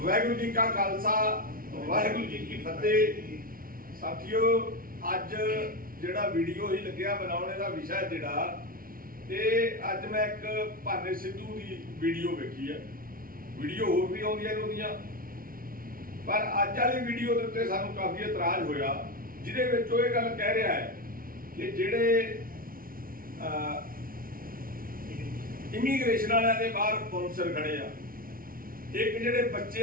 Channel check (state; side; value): late; left; 0.42 ms